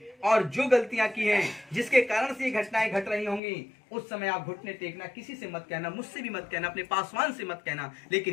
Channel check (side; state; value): right; drops out; at 3.4 s